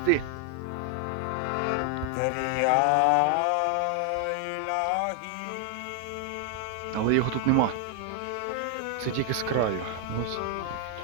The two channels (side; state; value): both; different; correlation 0.00